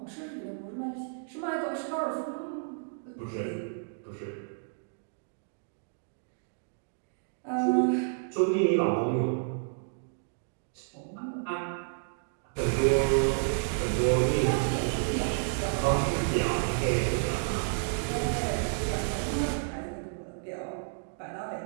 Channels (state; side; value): silent; left; digital silence